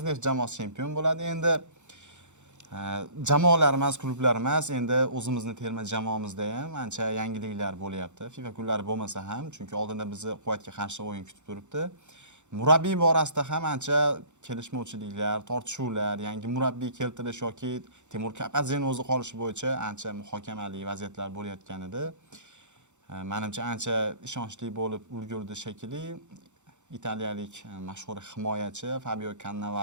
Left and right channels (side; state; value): left; late; 0.84 ms